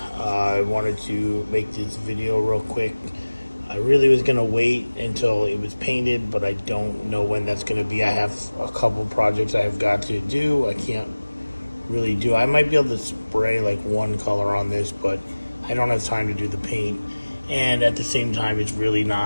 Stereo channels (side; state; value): both; inverted; correlation -1.00